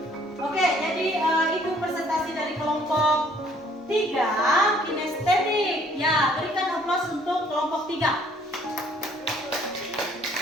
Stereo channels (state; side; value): normal; both; correlation 0.60